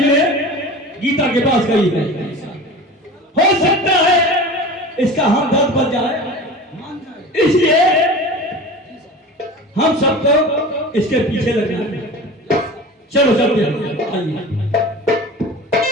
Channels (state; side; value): normal; both; correlation 0.35